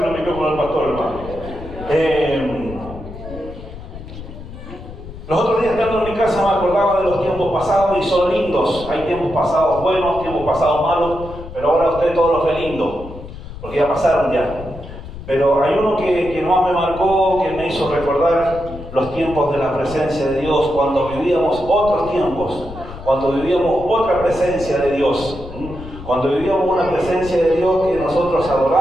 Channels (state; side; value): noise; left; rumble, 13 dB below the sound